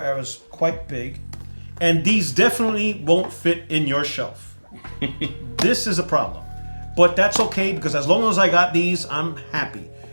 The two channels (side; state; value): both; inverted; correlation -1.00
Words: era, is quite big, and these definitely won't fit in your shelf. This is a problem, but that's okay because as long as I got these, I'm happy.